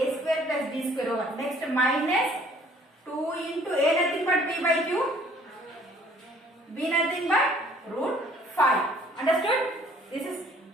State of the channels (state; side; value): normal; both; correlation 0.57